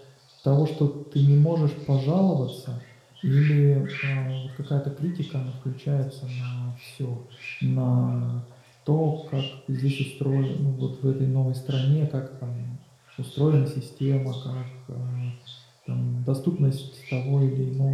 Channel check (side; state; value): both; identical; correlation 1.00